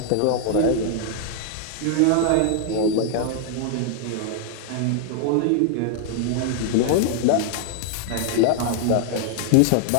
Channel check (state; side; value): different; both; correlation 0.00